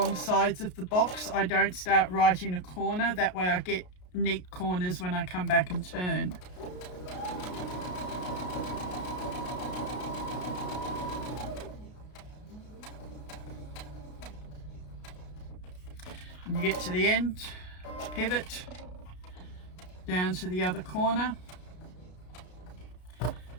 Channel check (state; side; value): late; right; 33 ms